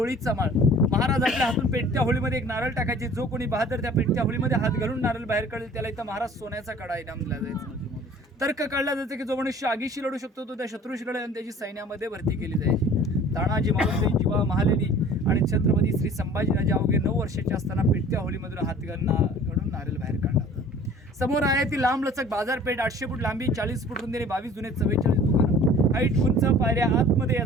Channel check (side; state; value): both; normal; correlation 0.48